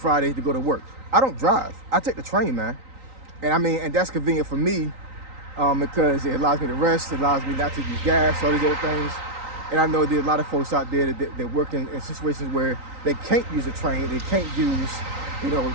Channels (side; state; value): left; late; 3.9 ms